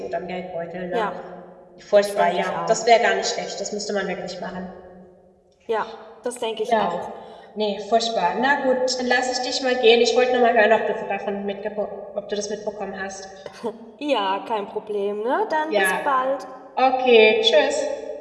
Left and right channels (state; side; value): identical; both; correlation 1.00